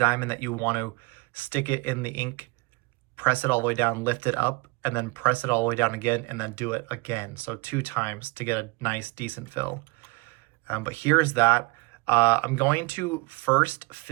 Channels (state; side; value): quieter; left; 26.4 dB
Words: that you want to stick it in the ink, press it all the way down, lift it up, and then press it all the way down again, and then do it again. So 2 times to get a nice, decent fill. But here's that. I'm going to first